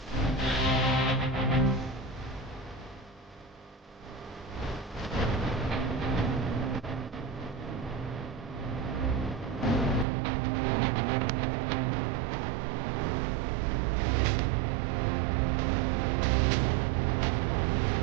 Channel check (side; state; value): left; drops out; at 10.1 s